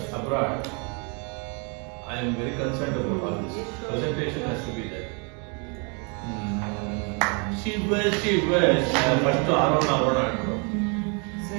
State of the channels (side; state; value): left; quieter; 35.0 dB